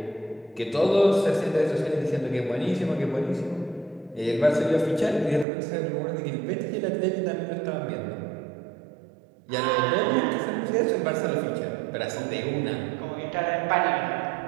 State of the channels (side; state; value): left; drops out; at 5.5 s